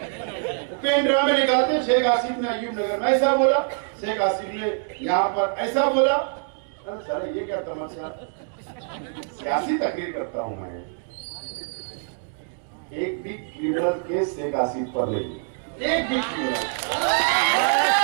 पेन ड्राइव में निकालते, शेख आसिफ ने अयूब नगर में ऐसा बोला, शेख आसिफ ने यहाँ पर ऐसा बोला। अरे सर ये क्या तमाशा, सियासी तकरीर करता हूं मैं। एक भी क्रिमिनल केस शेख आसिफ पर नहीं, एक भी क्रिमिनल।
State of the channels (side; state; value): left; silent; digital silence